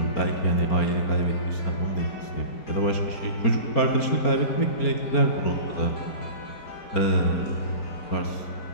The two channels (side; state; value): right; late; 4.4 ms